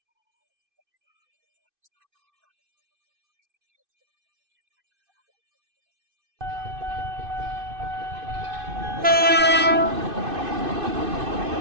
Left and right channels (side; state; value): left; late; 2.6 ms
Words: Saya bilang gitu. Paling saya bilang begitu. Makanya saya tahan. Jangan sampai ada penerobosan.